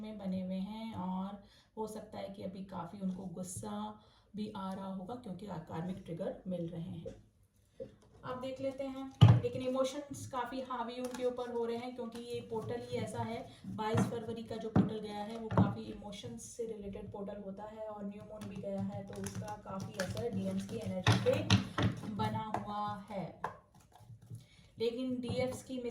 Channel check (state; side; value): identical; both; correlation 1.00